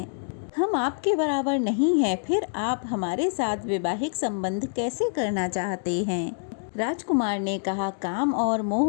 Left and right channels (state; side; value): silent; right; digital silence